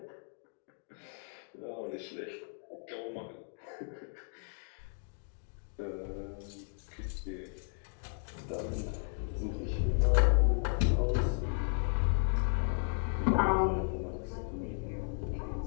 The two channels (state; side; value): silent; right; 55 dB below the other